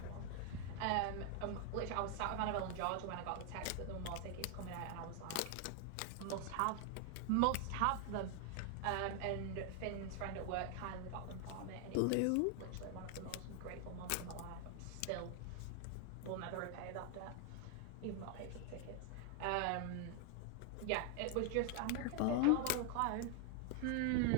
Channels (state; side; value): different; both; correlation 0.00